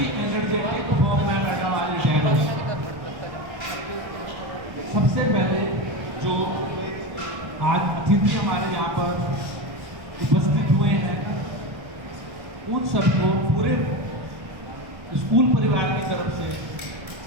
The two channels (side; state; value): left; late; 1.2 ms